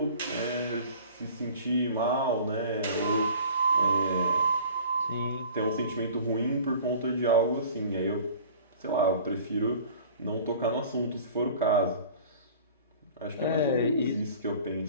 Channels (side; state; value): both; inverted; correlation -0.46